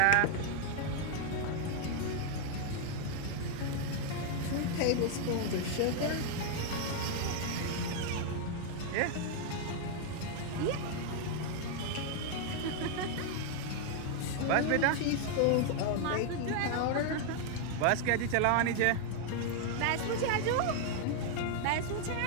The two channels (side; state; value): both; different; correlation 0.00